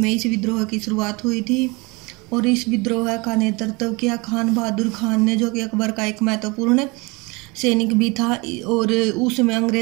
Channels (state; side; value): quieter; left; 26.5 dB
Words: इस विद्रोह की शुरुआत हुई थी और इस विद्रोह का नेतृत्व किया खान बहादुर खान ने, जो कि अकबर का एक महत्वपूर्ण सैनिक भी था। और उसमें